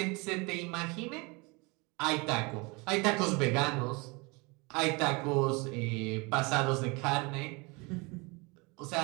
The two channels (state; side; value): quieter; left; 27.7 dB